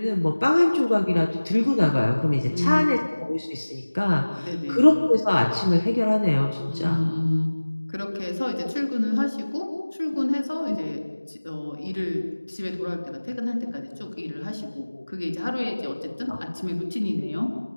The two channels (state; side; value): inverted; both; correlation -1.00